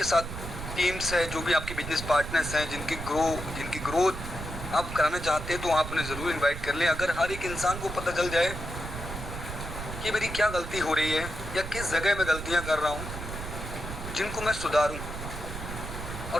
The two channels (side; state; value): right; noise; rumble, 8 dB below the sound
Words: साथ टीम्स है, जो भी आपके बिजनेस पार्टनर्स हैं, जिनकी ग्रोथ आप कराना चाहते हैं, तो आप उन्हें ज़रूर इनवाइट कर लें। अगर हर एक इंसान को पता चल जाए कि मेरी क्या गलती हो रही है या किस जगह मैं गलतियां कर रहा हूं जिनको मैं सुधारूं